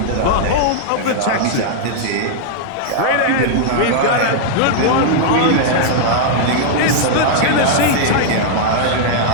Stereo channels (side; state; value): both; different; correlation -0.01